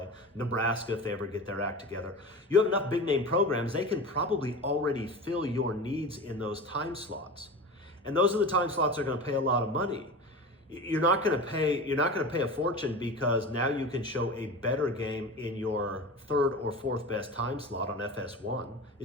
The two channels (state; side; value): normal; both; correlation 0.30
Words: Nebraska if they ever get their act together. You have enough big name programs, they can probably already fill your needs in those time slots. And those are the time slots that are gonna pay a lot of money. You're not gonna pay a fortune because now you can show a better game in your 3rd or 4th best time slot on FS1. It